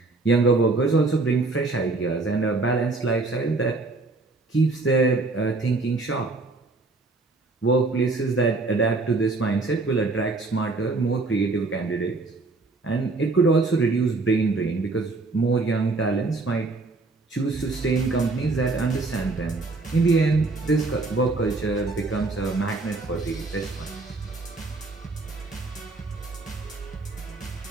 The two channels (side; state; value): left; quieter; 3.5 dB